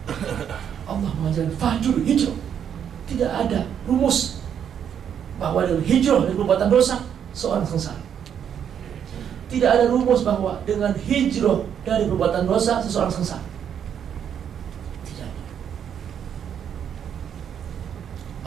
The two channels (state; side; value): quieter; left; 8.6 dB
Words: Allah mengajarkan fahjur, hijrah. Tidak ada rumus bahwa dengan hijrah dari perbuatan dosa seorang sengsara. Tidak ada rumus bahwa dengan hijrah dari perbuatan dosa seseorang sengsara. Tidak ada.